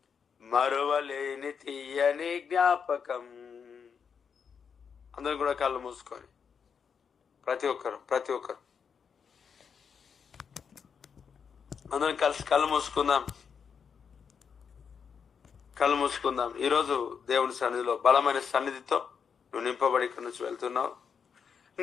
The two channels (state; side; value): quieter; right; 6.6 dB